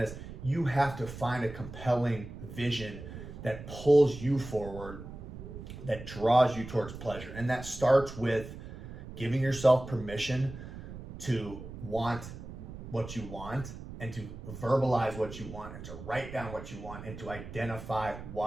You have to find a compelling vision that pulls you forward, that draws you towards pleasure. And that starts with giving yourself permission to want what you want, and to verbalize what you want, and to write down what you want, and to identify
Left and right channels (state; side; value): noise; right; rumble, 12 dB below the sound